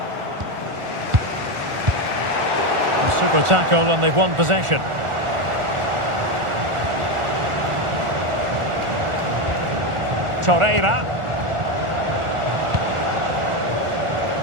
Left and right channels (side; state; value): left; late; 1.4 ms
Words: A super tackle and they've won possession. Torreira.